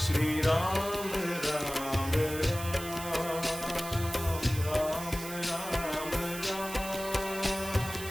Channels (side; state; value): right; noise; hiss, 10 dB below the sound